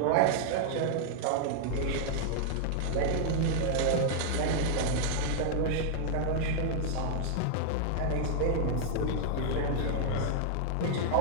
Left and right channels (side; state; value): both; different; correlation -0.01